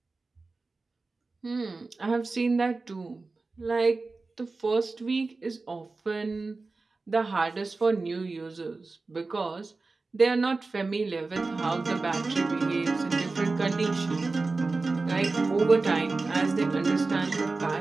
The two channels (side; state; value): left; quieter; 3.7 dB